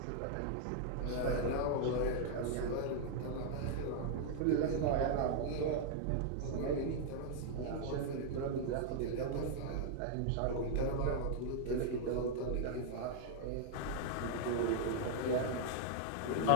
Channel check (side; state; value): both; different; correlation 0.00